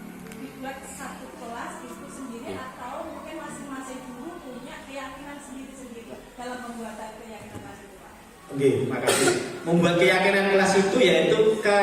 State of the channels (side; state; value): both; identical; correlation 1.00